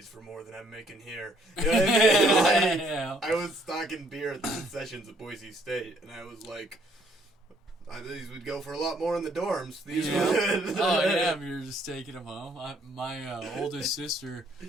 for more than I'm making here. You know what I mean? I was stocking beer at the concessions at Boise State, and I was like, these would go for a lot more in the dorms. These would. Oh yeah, we were just taking them home. My oldest sister,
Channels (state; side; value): normal; both; correlation 0.65